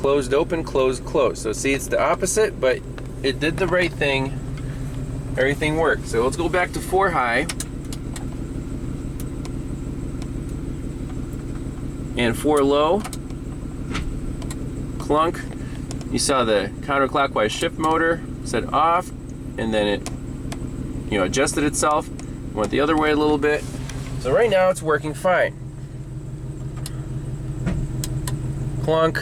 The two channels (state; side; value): identical; both; correlation 1.00